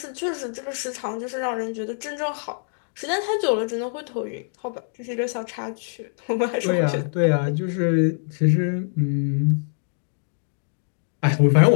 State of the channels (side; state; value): right; silent; digital silence